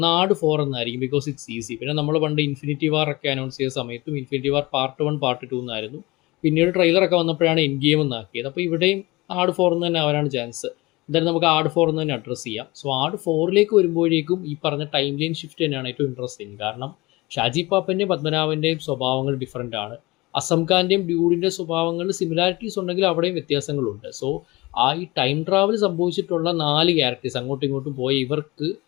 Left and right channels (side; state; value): right; quieter; 22.1 dB